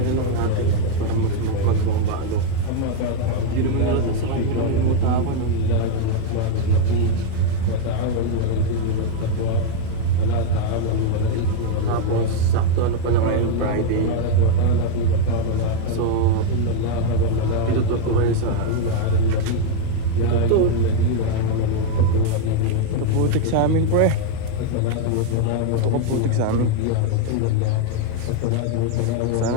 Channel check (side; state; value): both; different; correlation 0.00